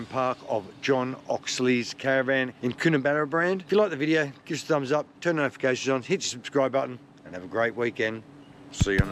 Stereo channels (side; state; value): both; identical; correlation 1.00